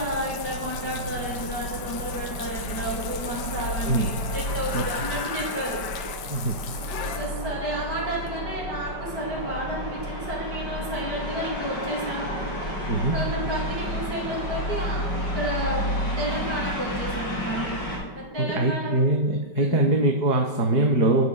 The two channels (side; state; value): right; late; 5.2 ms